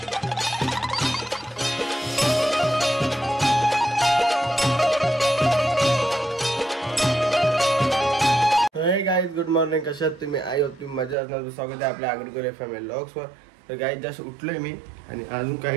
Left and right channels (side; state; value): left; drops out; at 11.2 s